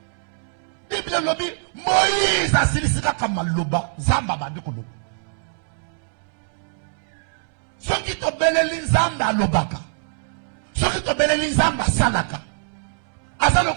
Bible lobi Moïse asilisi kaka maloba nzamba bandi koloba soki tobeleli nzambe alobaka soki tobeleli nzambe asalaka aza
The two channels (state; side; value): silent; left; 63 dB below the other